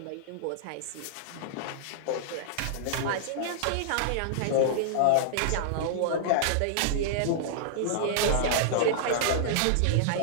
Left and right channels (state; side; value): different; both; correlation -0.01